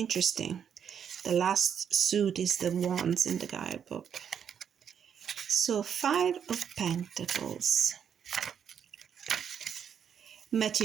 The last suit is the Wands in the guidebook. So Five of Pentacles.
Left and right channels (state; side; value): quieter; left; 8.0 dB